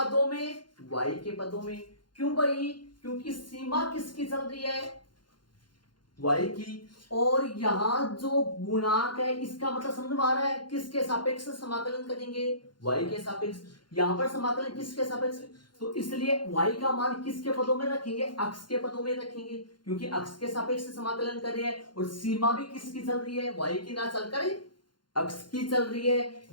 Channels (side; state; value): right; late; 0.71 ms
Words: में, y के पदों में। क्यों भाई, क्योंकि सीमा किसकी चल रही है, y की, और यहां जो गुणांक है इसका मतलब समझ में आ रहा है, किसके सापेक्ष समाकलन करेंगे, y के सापेक्ष। यहां पर समाकलन किसके सापेक्ष, तो इसलिए y का मान किसके पदों में रखेंगे, अक्ष के पदों में रखेंगे, क्योंकि अक्ष के सापेक्ष समाकलन कर रहे हैं। और सीमा भी किसकी चल रही है, y की ना चलकर अक्ष की चल रही है।